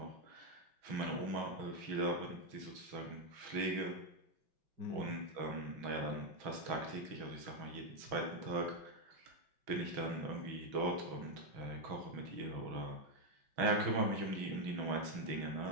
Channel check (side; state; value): left; late; 6.1 ms